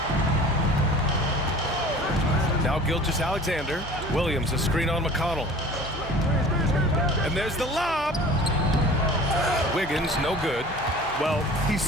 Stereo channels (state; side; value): normal; both; correlation 0.44